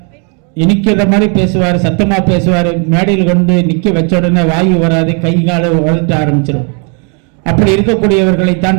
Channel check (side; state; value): left; quieter; 37.5 dB